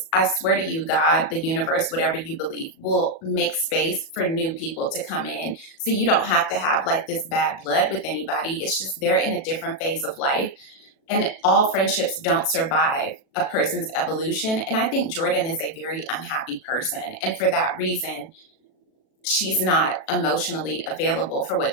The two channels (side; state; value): right; late; 37 ms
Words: I swear to you, God, the universe, whatever you believe, will make space for new people to come in. So you don't have to have like this bad blood with anybody. It's just they're in a different phase of life. And all friendships don't survive a person's evolution. And I think Jordan is a very unhappy person. And for that reason, she's not emotionally available for what